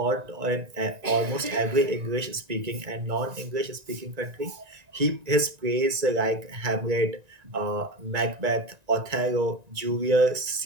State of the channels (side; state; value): left; late; 1.9 ms